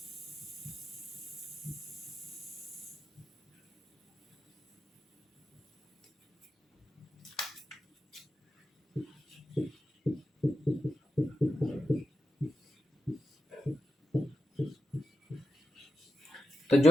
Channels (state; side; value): normal; both; correlation 0.89